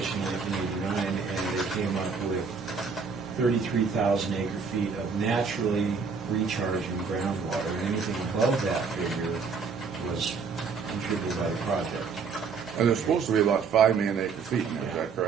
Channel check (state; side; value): quieter; left; 5.4 dB